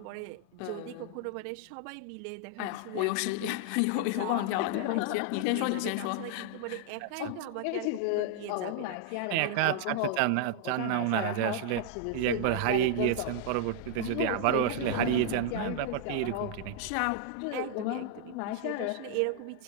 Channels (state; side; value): different; both; correlation -0.01